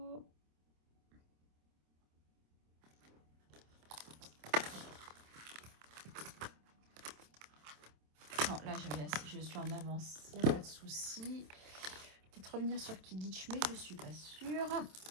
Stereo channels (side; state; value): left; late; 27 ms